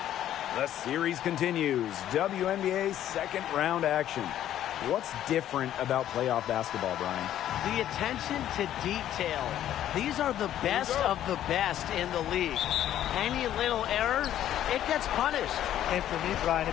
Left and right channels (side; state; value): right; quieter; 11.7 dB